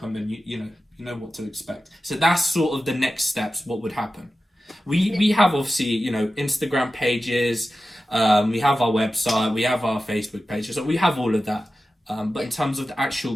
and you know what to expect. So that's sort of the next steps. What would happen? We have obviously Instagram pages, we have our website, we have our Facebook pages, so we have all of that. But in terms of the actual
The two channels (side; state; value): both; normal; correlation 0.94